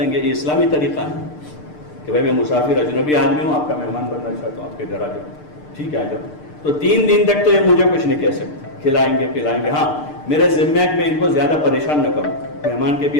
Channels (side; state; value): right; late; 6.7 ms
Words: گے. یہ اسلامی طریقہ ہے کہ بھائی میں مسافر اجنبی آدمی ہوں، آپ کا مہمان بننا چاہتا ہوں، آپ کے گھر آ جاؤ، ٹھیک ہے آ جاؤ. تو 3 دن تک تو یہ مجھے کچھ نہیں کہہ سکتے، کھلائیں گے پلائیں گے. ہاں میرے ذمہ ہے کہ میں ان کو زیادہ پریشان نہ کروں، مہمان کے بھی